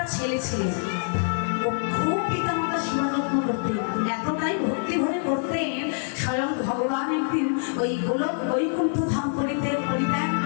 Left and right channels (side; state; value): right; silent; 57 dB below the other